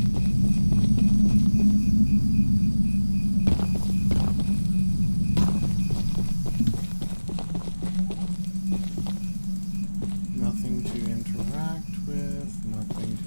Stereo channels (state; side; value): inverted; both; correlation -1.00